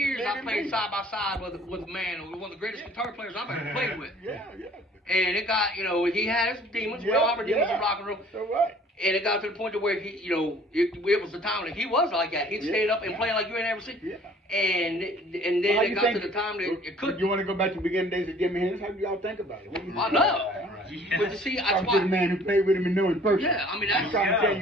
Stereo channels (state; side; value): normal; both; correlation 0.53